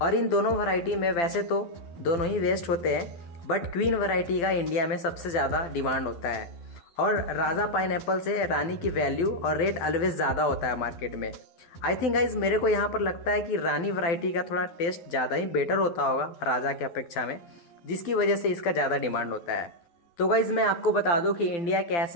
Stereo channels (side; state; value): right; late; 12 ms